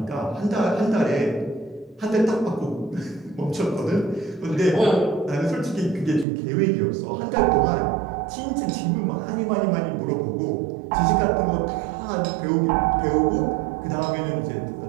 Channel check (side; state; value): left; drops out; at 6.2 s